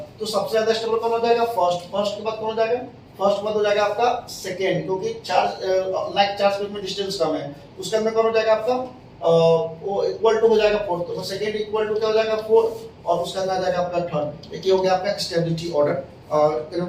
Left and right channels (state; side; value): identical; both; correlation 1.00